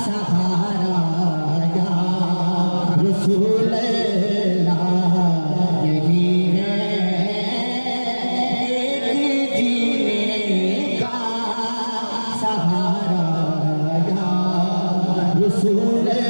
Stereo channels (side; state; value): both; inverted; correlation -1.00